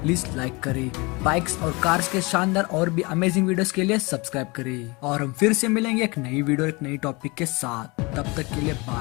लाइक करें। बाइक्स और कार्स के शानदार और भी अमेजिंग वीडियोस के लिए सब्सक्राइब करें, और हम फिर से मिलेंगे एक नई वीडियो एक नई टॉपिक के साथ। तब तक के लिए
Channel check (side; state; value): right; quieter; 26.2 dB